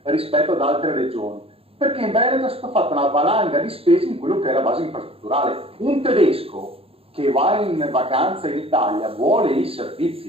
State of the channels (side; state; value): left; late; 0.28 ms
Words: rispetto ad altre regioni, perché in Veneto è stata fatta una valanga di spese in quello che è la base infrastrutturale. Un tedesco che va in vacanza in Italia vuole i